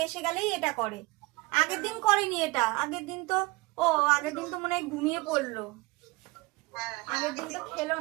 এসে গেলেই এটা করে। আগের দিন করেনি এটা, আগের দিন তো আগের দিন তো মনে হয় ঘুমিয়ে পড়লো। আগের দিন তো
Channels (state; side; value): quieter; left; 23.0 dB